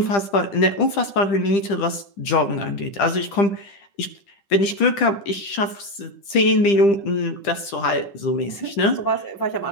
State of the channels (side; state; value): right; late; 10 ms